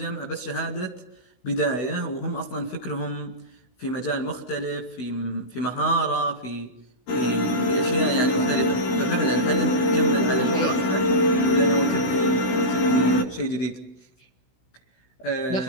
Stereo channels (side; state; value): right; late; 16 ms